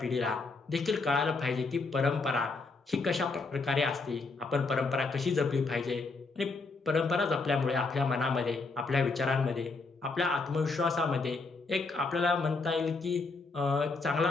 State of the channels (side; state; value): right; quieter; 3.9 dB